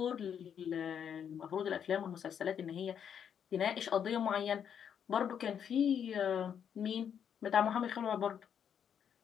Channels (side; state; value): right; quieter; 8.2 dB